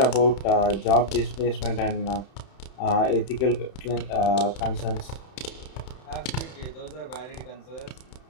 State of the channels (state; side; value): late; right; 31 ms